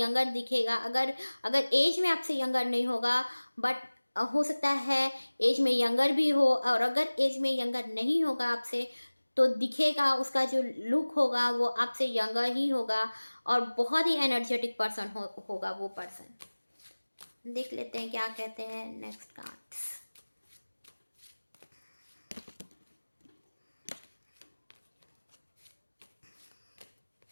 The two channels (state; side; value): inverted; both; correlation -1.00